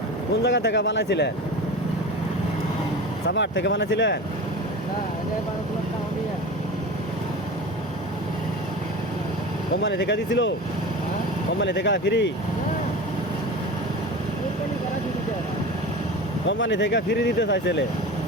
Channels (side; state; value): both; normal; correlation 0.32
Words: কোন জায়গা থেকে বানাইছিলেন? সাভার থেকে বানাইছিলেন? না এটা 12 লাখ টাকা দিয়ে কোম্পানি থেকে দিছিল? হ্যাঁ কোম্পানি থেকে ফ্রি? কোম্পানি করা দিতে কোম্পানি থেকে ফ্রি দিতে চাইছিলে,